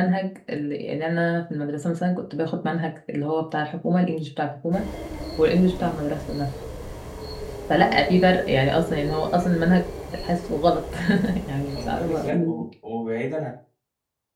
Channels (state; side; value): identical; both; correlation 1.00